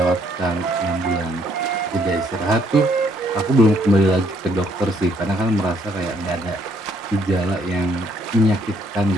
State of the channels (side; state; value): both; normal; correlation 0.68